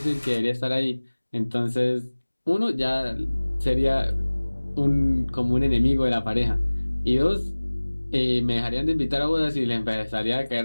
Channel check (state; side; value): inverted; both; correlation -1.00